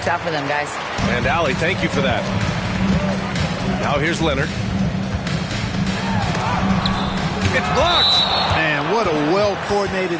out for them, guys. And Allie, thank you for that. Now here's Leonard. It's blocked. Man, what a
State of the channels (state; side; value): identical; both; correlation 1.00